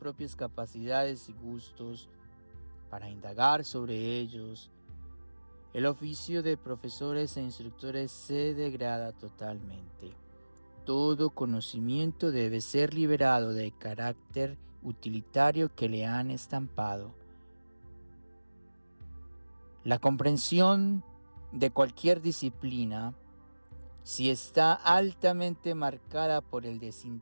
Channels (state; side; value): inverted; both; correlation -1.00